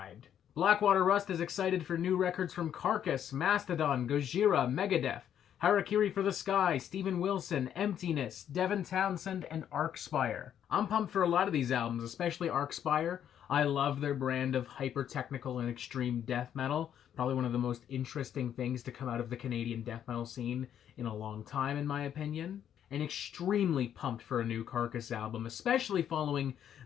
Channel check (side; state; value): right; quieter; 9.7 dB